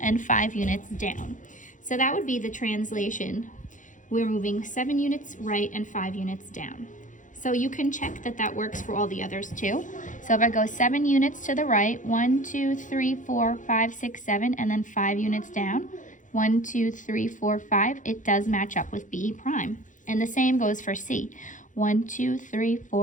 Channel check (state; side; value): late; right; 0.37 ms